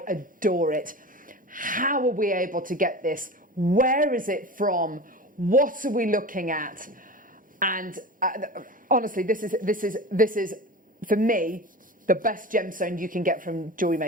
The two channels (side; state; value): both; normal; correlation 0.31